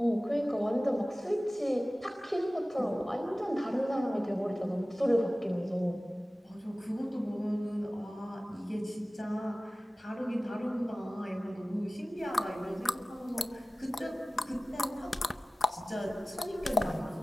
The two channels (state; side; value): normal; both; correlation 0.97